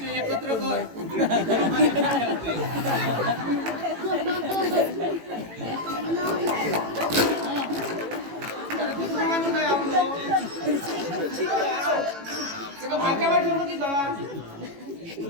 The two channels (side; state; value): left; late; 18 ms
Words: एकत्र कर. काय आपलं भाच्या बाई ठेवलं की जा